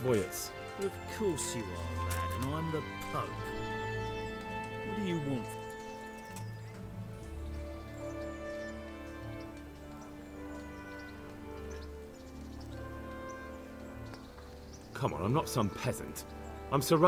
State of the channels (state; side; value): identical; both; correlation 1.00